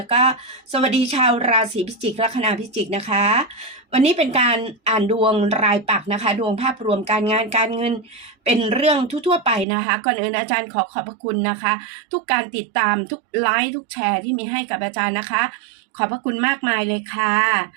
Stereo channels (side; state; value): left; drops out; at 9.7 s